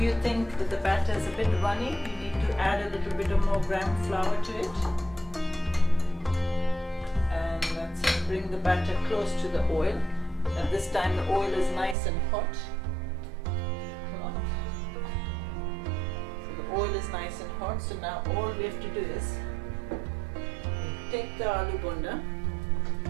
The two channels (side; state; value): left; drops out; at 12.0 s